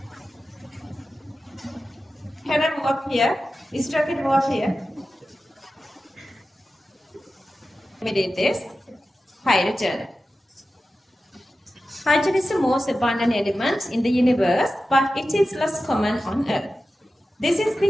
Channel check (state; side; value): normal; both; correlation 0.93